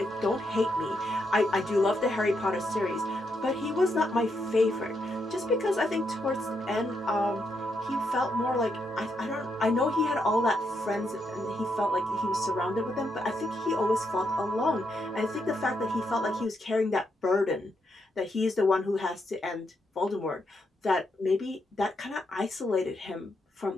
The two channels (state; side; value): normal; both; correlation 0.80